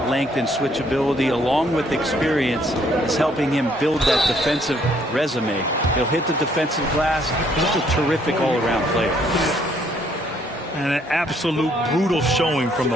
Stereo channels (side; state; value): both; normal; correlation 0.66